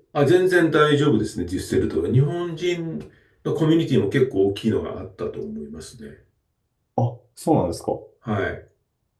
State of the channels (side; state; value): both; identical; correlation 1.00